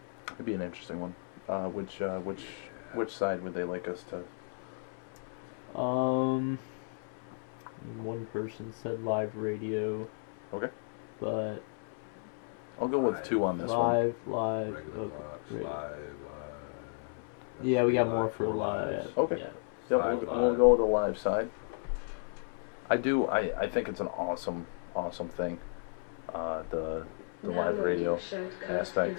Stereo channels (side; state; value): right; silent; 55 dB below the other